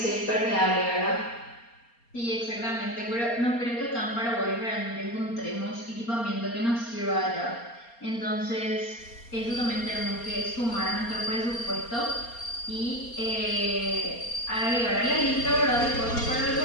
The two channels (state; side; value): late; right; 4.3 ms